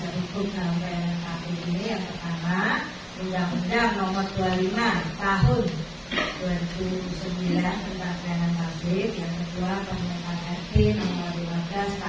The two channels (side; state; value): both; identical; correlation 1.00